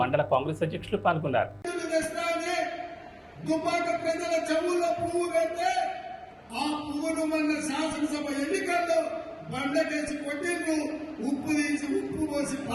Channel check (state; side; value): identical; both; correlation 1.00